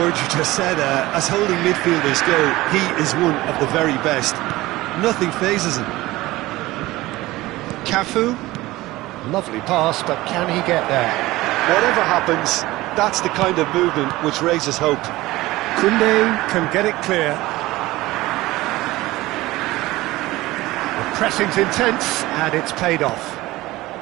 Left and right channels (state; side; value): quieter; left; 18.6 dB